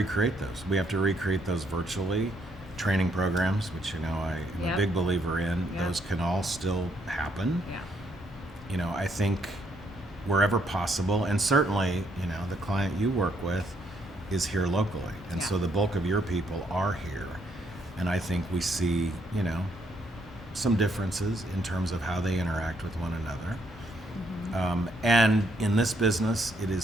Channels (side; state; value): both; normal; correlation 0.72